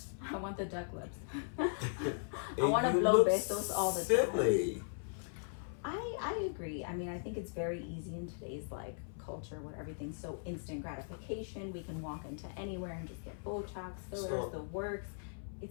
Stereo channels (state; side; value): silent; right; 52 dB below the other